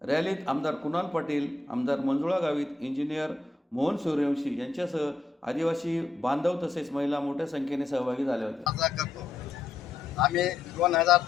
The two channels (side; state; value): right; quieter; 3.3 dB